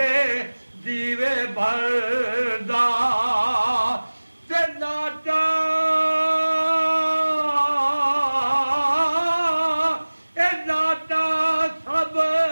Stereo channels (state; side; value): inverted; both; correlation -1.00